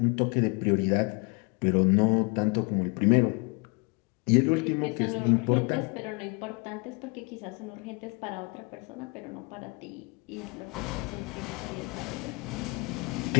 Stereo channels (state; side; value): quieter; right; 30.2 dB